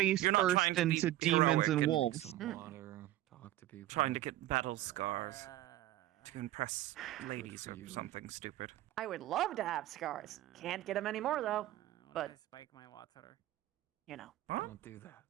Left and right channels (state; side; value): quieter; left; 15.1 dB